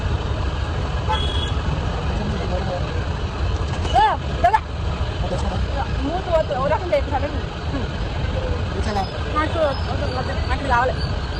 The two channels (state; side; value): identical; both; correlation 1.00